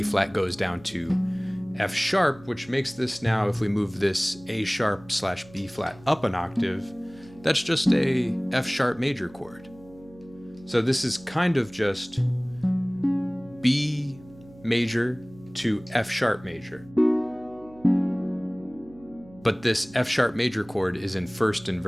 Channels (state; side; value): noise; right; hum, 23 dB below the sound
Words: flat goes down to F sharp, which makes this now, if we move this A sharp / B flat up an octave, that's just a F sharp major chord. So this is kind of just B major to F sharp major. But this F sharp major chord is in first